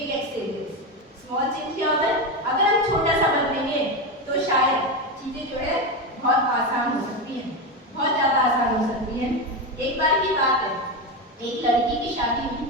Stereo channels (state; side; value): normal; both; correlation 0.15